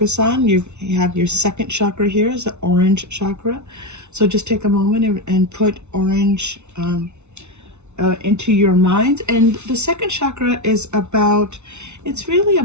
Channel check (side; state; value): left; late; 0.82 ms